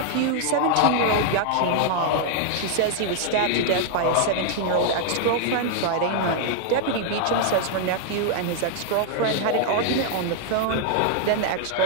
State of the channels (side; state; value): both; different; correlation 0.00